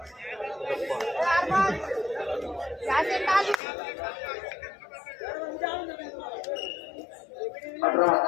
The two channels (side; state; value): right; drops out; at 3.6 s